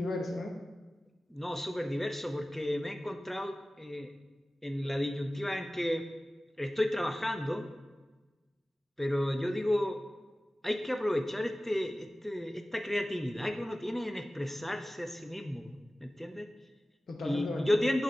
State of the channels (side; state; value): both; normal; correlation 0.97